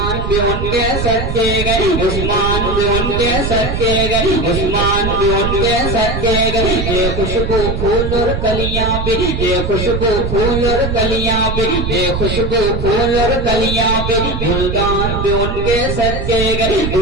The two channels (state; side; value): noise; right; rumble, 3 dB below the sound